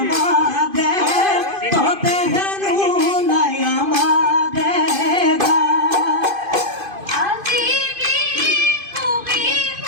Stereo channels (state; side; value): late; left; 2.5 ms